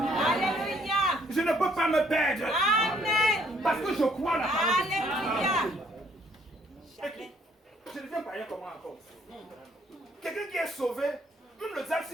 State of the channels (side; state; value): both; normal; correlation 0.64